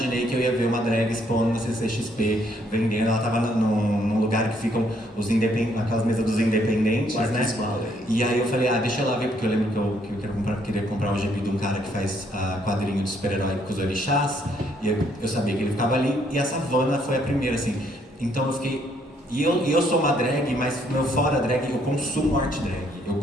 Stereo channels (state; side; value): normal; both; correlation 0.69